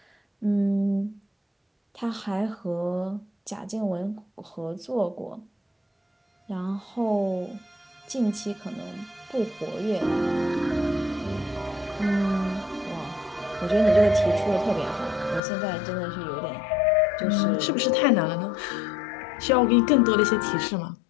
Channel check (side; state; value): right; drops out; at 15.4 s